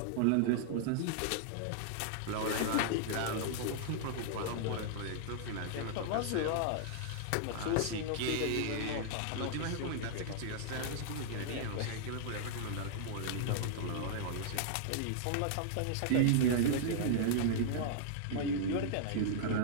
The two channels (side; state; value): both; different; correlation -0.01